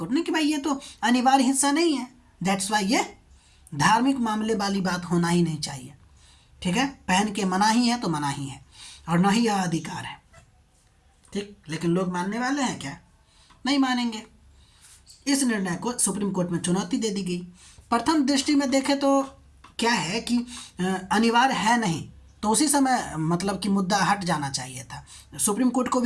ने, कि भाई ये तो अनिवार्य हिस्सा नहीं है, दैट्स वाई ये धार्मिक मामले वाली बात होना ही नहीं चाहिए। ठीक है, पहन के मना ही है तो मना ही है, और ना ही यह अधिकार है। ठीक, लेकिन लोग मानने वाले हैं क्या? नहीं मानेंगे। इस निर्णय को सुप्रीम कोर्ट में चुनौती दे दी गई। प्रथम दृष्टि में देखें तो क्या है कि अनिवार्य है नहीं, तो उसी समय मतलब कि मुद्दा हट जाना चाहिए था, सुप्रीम कोर्ट को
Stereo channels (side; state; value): both; identical; correlation 1.00